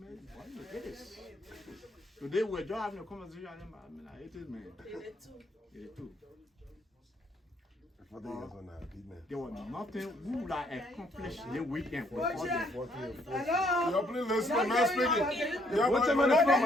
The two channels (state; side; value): normal; both; correlation 0.68